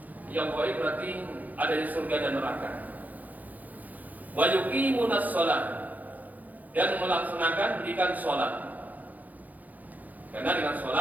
Yang ghaib berarti ada di surga dan neraka. Wa yuqimunas shalah, dan melaksanakan pendidikan sholat. Karena dengan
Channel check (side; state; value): left; late; 0.080 ms